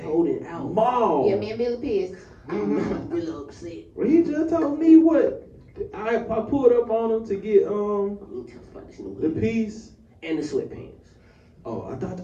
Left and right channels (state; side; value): identical; both; correlation 1.00